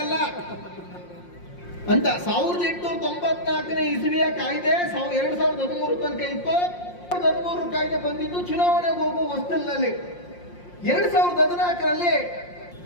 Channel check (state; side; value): late; right; 5.6 ms